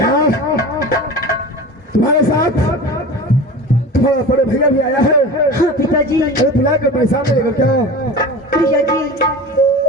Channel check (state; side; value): normal; both; correlation 0.33